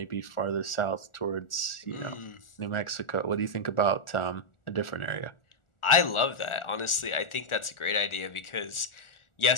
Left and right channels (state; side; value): late; right; 1.4 ms